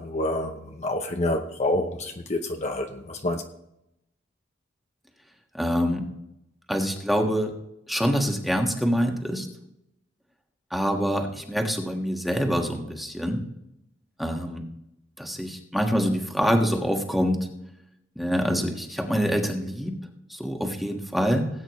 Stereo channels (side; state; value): both; normal; correlation 0.82